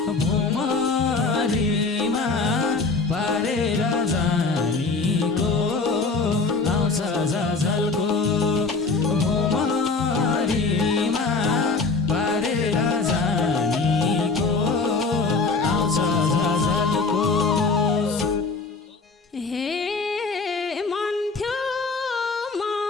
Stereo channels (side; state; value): right; quieter; 4.1 dB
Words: भुमरीमा पारेर जानीको आउँछ झझल्को भुमरीमा पारेर जानीको आउँछ झझल्को हे मन थियो